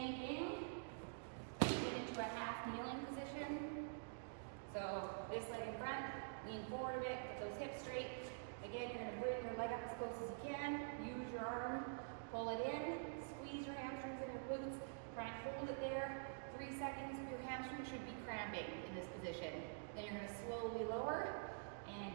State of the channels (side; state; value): left; silent; digital silence